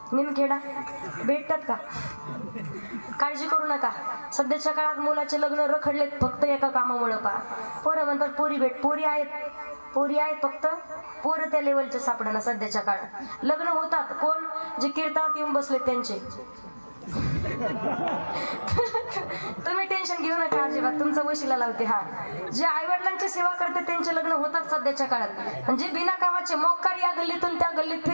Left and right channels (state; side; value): inverted; both; correlation -1.00